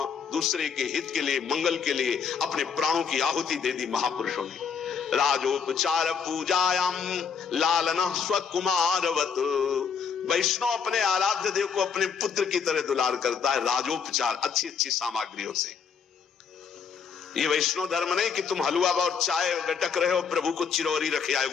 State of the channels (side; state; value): right; quieter; 6.4 dB